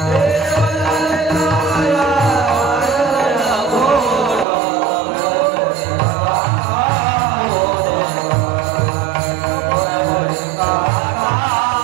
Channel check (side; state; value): left; drops out; at 4.5 s